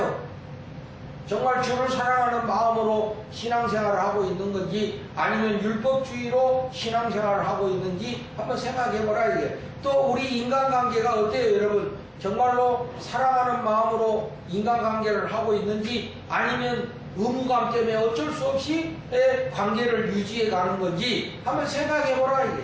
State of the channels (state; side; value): identical; both; correlation 1.00